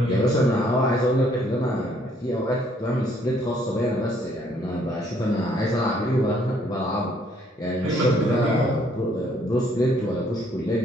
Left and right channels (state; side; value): normal; both; correlation 0.65